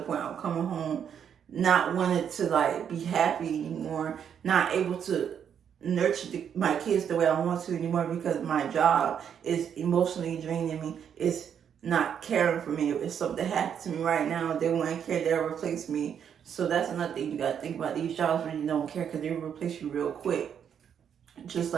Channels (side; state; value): left; quieter; 8.3 dB